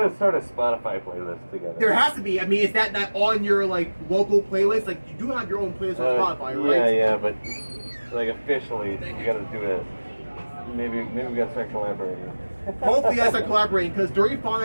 start a Spotify playlist together. There has to be. I mean, is that on your local playlist? Like, you do have your own playlist on Spotify, right? Yeah, but officially, we gotta do it. Maybe we gotta start collaborating. Hopefully, I start collaborating because Dirty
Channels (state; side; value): inverted; both; correlation -1.00